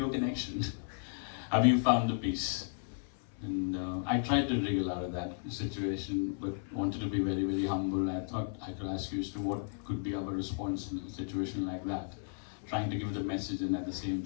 connection? Have you found the peace? And I tried to wriggle out of that situation, but wanted to be very, very humble. I thought I could ask you as to what could be our response in a situation like that. Trying to give the message and at the same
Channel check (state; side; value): silent; right; 55 dB below the other